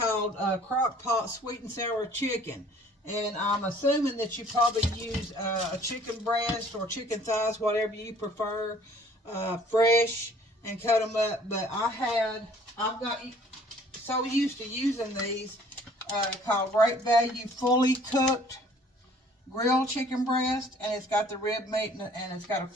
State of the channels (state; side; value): normal; both; correlation 0.55